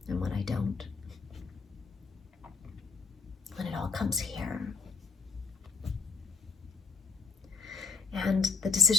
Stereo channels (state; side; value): quieter; right; 5.2 dB